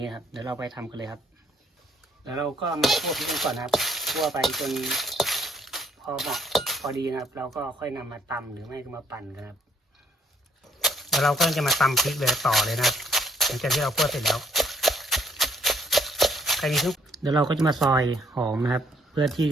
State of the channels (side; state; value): both; normal; correlation 0.65